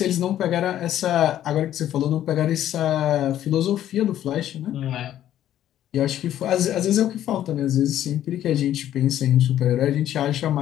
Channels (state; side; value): quieter; right; 11.8 dB